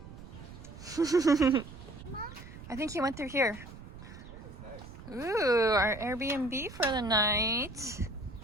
I think he went through here. Ooh, our Airbnb for the night.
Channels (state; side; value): noise; right; rumble, 15 dB below the sound